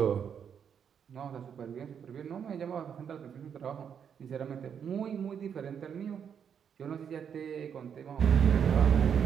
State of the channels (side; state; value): left; quieter; 7.7 dB